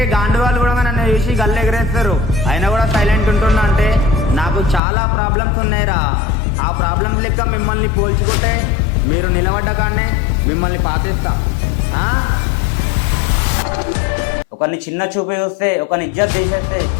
గాండు వాళ్ళు కూడా నన్ను చూసి గల్లు ఎగరేస్తారు. అయినా కూడా సైలెంట్ ఉంటున్నా అంటే నాకు చాలా ప్రాబ్లమ్స్ ఉన్నాయిరా. ఆ ప్రాబ్లమ్స్ లెక్క మిమ్మల్ని పోల్చుకుంటే మీరు నిలబడ్డ కాడనే మిమ్మల్ని పాతిస్తా. ఒకరిని చిన్న చూపి చూస్తే, ఒకరిని ఇజ్జత్ తీసేస్తే,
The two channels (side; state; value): right; drops out; at 4.8 s